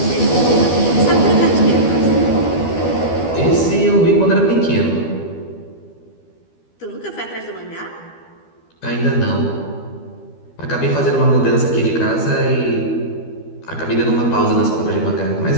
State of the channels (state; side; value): late; right; 12 ms